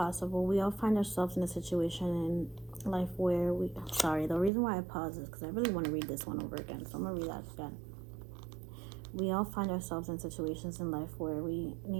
We all find ourselves in a situation in life where sorry, the reason why I pause is because I really want to read this one over again. So I'm going to read that again. We all find ourselves in situations in life where we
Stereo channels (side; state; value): left; drops out; at 4.5 s